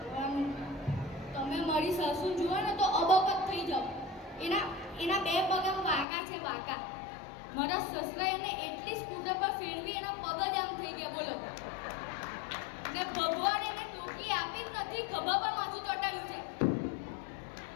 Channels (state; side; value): drops out; right; at 6.1 s